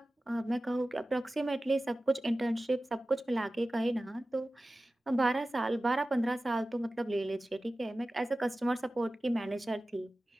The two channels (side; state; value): both; normal; correlation 0.95